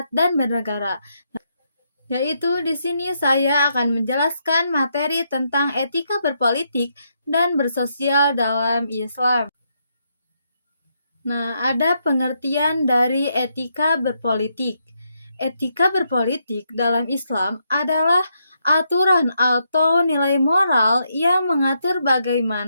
dan bernegara. Yaitu di sini saya akan menjelaskan materi tentang etika berpolitik dan bersosial dalam Islam. Nah, ada pengertian dari etika berpolitik. Etika berpolitik dalam Islam adalah aturan atau nilai moral yang mengatur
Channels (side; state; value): both; inverted; correlation -0.79